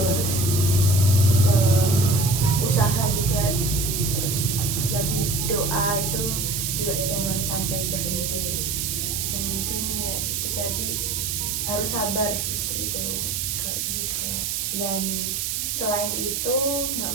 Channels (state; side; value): noise; right; hiss, 1 dB below the sound